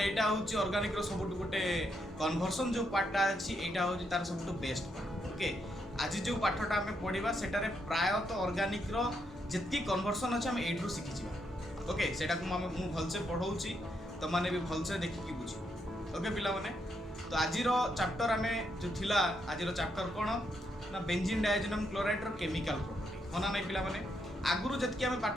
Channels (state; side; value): normal; both; correlation 0.79